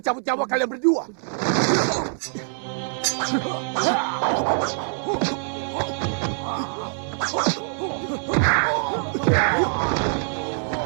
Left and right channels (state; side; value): silent; left; digital silence